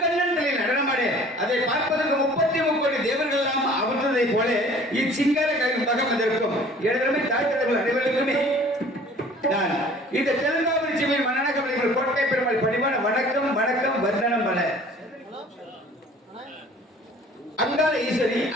நடனமாடு அதை பார்ப்பதற்கு 33 கோடி தேவர்கள் எல்லாம் அமர்ந்ததை போல இச்சிங்கார கவி மகம் வந்திருக்கும். எனதருமை தாய்த்தலைவர்கள் அனைவருக்குமே நான் இந்த தெலுங்காபுரி சிவின் மன்னனகமலைகள் கோட்டை பெருமாள் பணிவான வணக்கம் வணக்கம் வந்தனம் பல. அங்காள ஈஸ்வரி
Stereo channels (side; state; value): both; normal; correlation 0.50